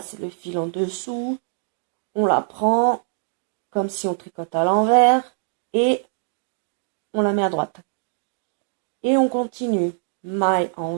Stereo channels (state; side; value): silent; left; digital silence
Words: le fil en dessous, on la prend comme si on tricote à l'envers et on la met à droite. Et on continue. Maille